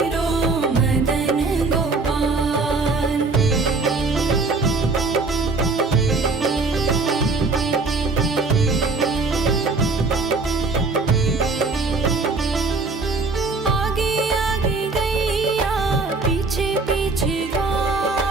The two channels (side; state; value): left; quieter; 3.9 dB